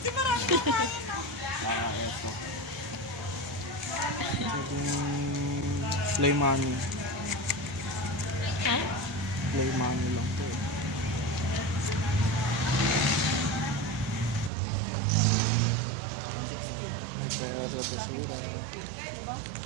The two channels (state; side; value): drops out; left; at 14.5 s